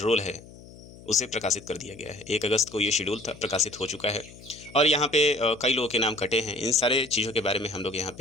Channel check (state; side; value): noise; left; hum, 19 dB below the sound